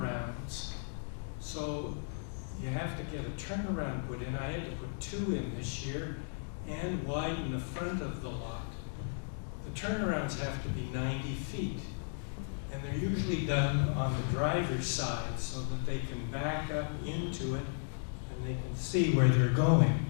So you have to get a turnaround put in. I had to put 2 in this year and widen the front of the lot. The turnarounds have to be 90 feet. And they're usually done on the driver's side so that they can back up into it and they can see where they're going.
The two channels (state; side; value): silent; right; digital silence